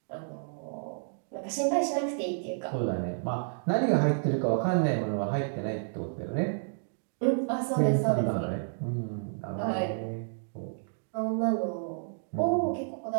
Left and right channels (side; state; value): left; silent; digital silence